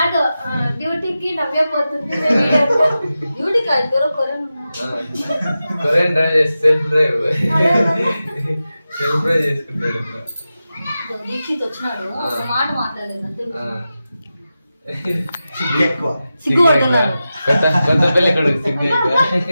డ్యూటీకి నవ్వే పోతుంది. డ్యూటీ కాదు, కొరియన్ డ్రైవ్ చేసి సెల్ఫ్ డ్రైవ్ చేసుకుంటాడు. దీక్షిత్ వచ్చినాడు, ఒక మాట మాట్లాడలేదు. సిగ్గుపడుతున్నారు. కొత్త పెళ్లి కొడుకు సిగ్గు.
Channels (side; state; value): both; inverted; correlation -0.93